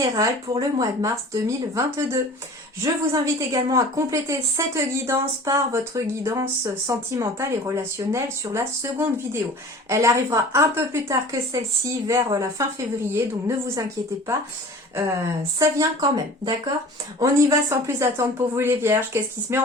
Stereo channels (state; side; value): normal; both; correlation 0.42